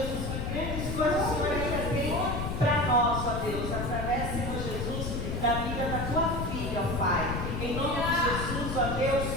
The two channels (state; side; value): noise; left; rumble, 3 dB below the sound